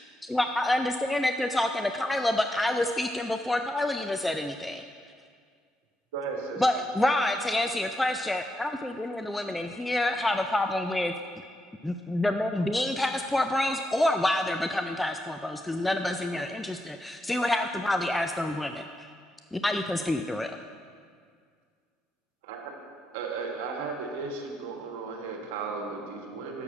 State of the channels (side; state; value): both; normal; correlation 0.82